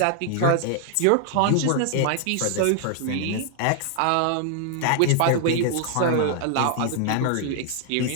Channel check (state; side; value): different; both; correlation 0.00